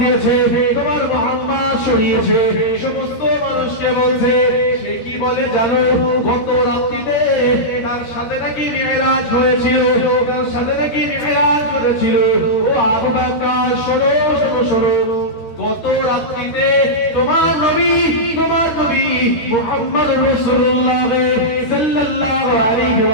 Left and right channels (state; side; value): late; right; 13 ms